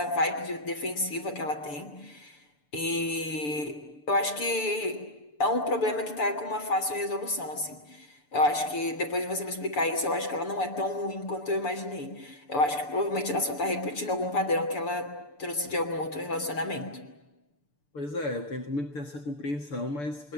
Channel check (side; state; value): right; late; 6.8 ms